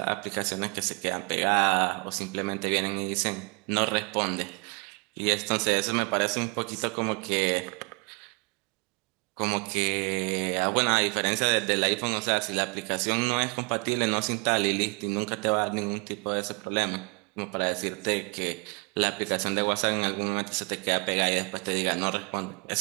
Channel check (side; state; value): left; quieter; 30.4 dB